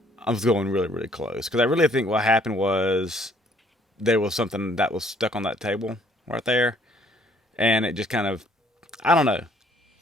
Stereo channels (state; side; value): normal; both; correlation 0.63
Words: I was going really, really close, because I really think what happened was there was something that was stuck on that table right there, and it just kind of, I don't know.